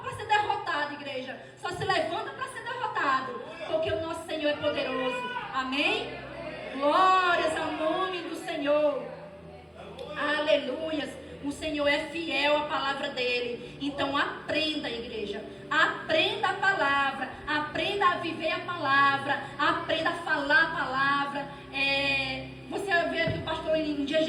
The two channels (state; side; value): identical; both; correlation 1.00